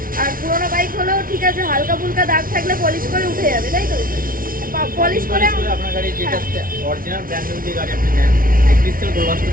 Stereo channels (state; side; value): late; left; 0.41 ms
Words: আর পুরোনো বাইক হলেও ঠিক আছে, হালকা ফুলকা দাগ থাকলে পলিশ করে উঠে যাবে, তাই তো? পলিশ করে আপনার গাড়ি যেটা অরিজিনাল ব্র্যান্ড নিউ যে গাড়ি আপনি নেন, ক্রিস্টাল গ্লাসটা